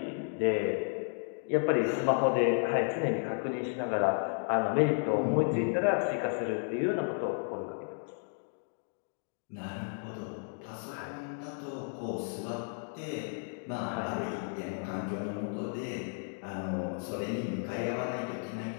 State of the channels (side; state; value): right; silent; 56 dB below the other